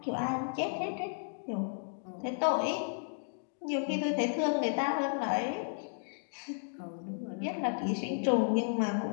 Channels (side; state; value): right; silent; digital silence